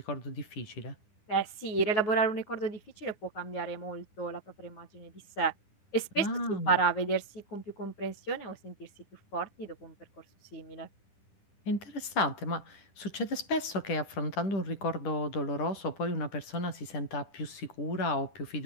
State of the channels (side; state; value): right; late; 10 ms